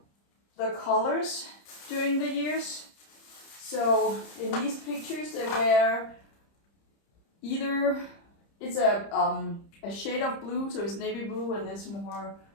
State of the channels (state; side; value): late; right; 30 ms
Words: the colors during the years. So in these pictures, they were either, it's a shade of blue, so it's navy blue, and it's more